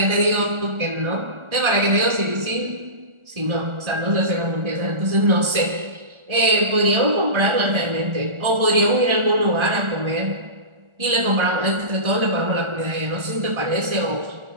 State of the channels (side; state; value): left; late; 1.4 ms